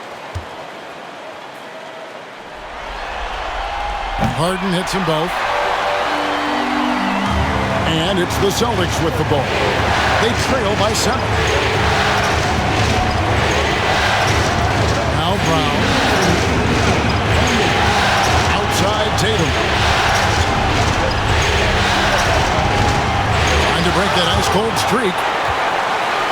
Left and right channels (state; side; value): identical; both; correlation 1.00